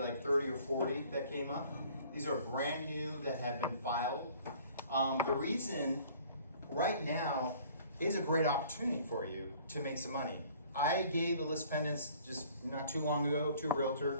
30 or 40 that came up. These are brand new that have been filed. The reason right now is a great opportunity for you to make some money. I gave the list pendants just not too long ago to a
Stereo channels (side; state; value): both; inverted; correlation -0.53